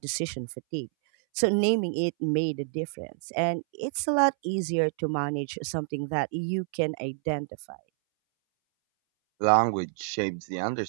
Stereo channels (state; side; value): silent; left; 59 dB below the other